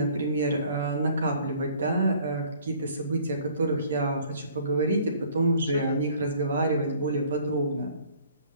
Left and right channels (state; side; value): inverted; both; correlation -0.55